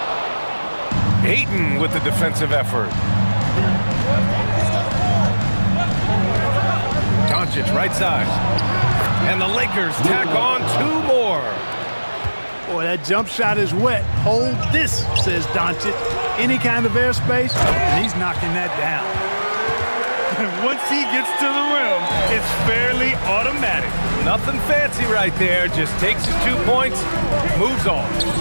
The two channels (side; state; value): both; inverted; correlation -1.00